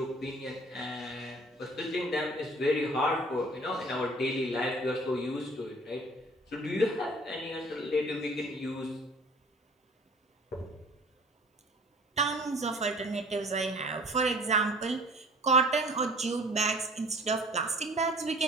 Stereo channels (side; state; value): both; normal; correlation 0.49